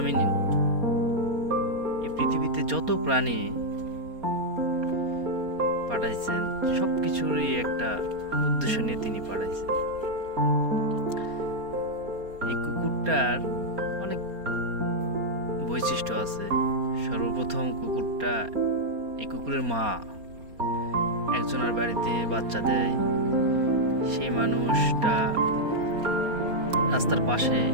এই পৃথিবীতে যত প্রাণী পাঠাইছেন সবকিছুরই একটা উদ্দেশ্য নিয়ে তিনি পাঠাইছেন। এই কুকুরটার অনেক বৈশিষ্ট্য আছে। সর্বপ্রথম এই কুকুরের মা একজনের বাড়িতে বাচ্চা দেয়। সেই মানুষটা রাস্তার পাশে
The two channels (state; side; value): late; left; 4.3 ms